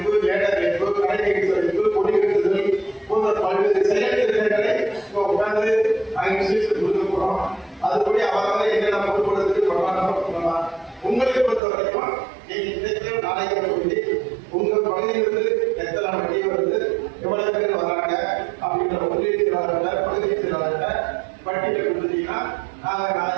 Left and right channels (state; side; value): drops out; left; at 11.6 s